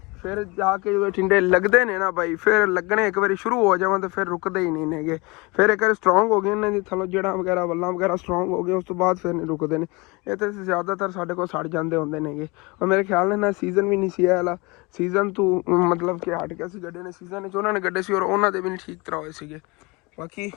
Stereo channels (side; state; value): right; quieter; 26.1 dB